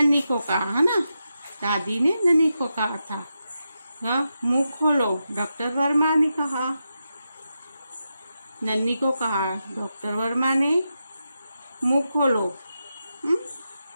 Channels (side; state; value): both; inverted; correlation -0.88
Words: को कहा, है ना, दादी ने नन्ही को कहा था। मुंह खोलो, डॉक्टर वर्मा ने कहा। नन्ही को कहा डॉक्टर वर्मा ने, मुंह खोलो।